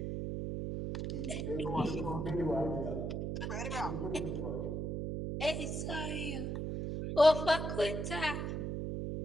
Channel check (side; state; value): right; noise; hum, 2 dB below the sound